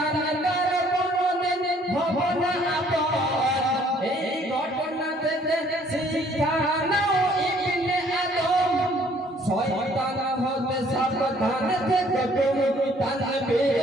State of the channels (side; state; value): both; normal; correlation 0.61